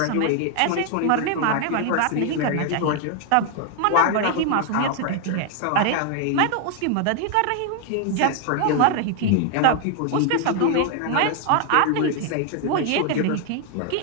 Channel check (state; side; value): different; both; correlation 0.00